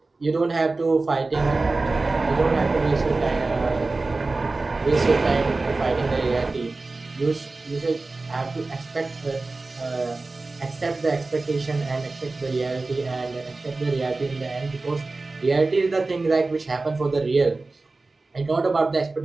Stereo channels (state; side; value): quieter; left; 3.5 dB